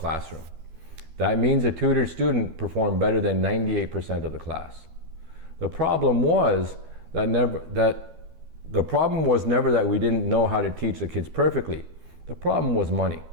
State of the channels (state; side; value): late; left; 12 ms